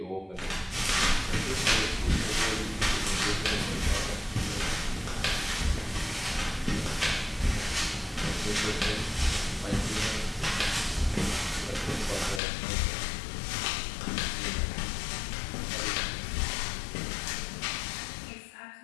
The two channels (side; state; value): right; drops out; at 12.4 s